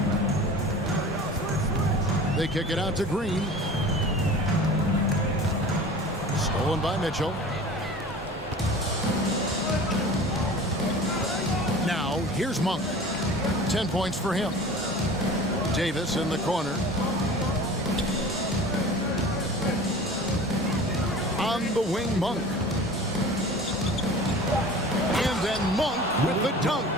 They kick it out to Green. Stolen by Mitchell. Now, here's Monk. 10 points for him. Davis in the corner. On the wing, Monk. And then Monk with the dunk.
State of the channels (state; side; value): normal; both; correlation 0.40